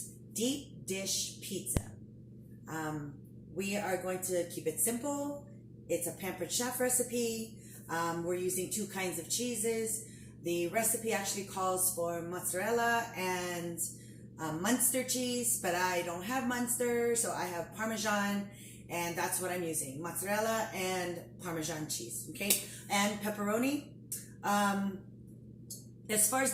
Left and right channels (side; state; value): both; identical; correlation 1.00